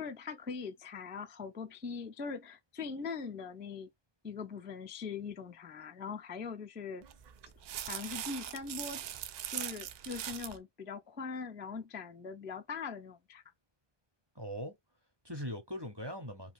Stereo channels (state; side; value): late; left; 1.2 ms